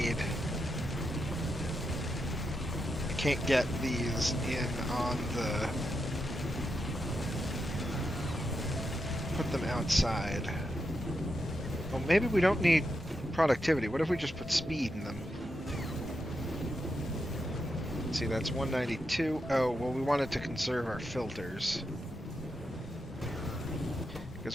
can't get these in on the... Put them outside. Well, maybe we don't need productivity. What if we just put speed in them? Let's see, that's 192. Oh, well, we wanted to conserve our filters.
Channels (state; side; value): normal; both; correlation 0.85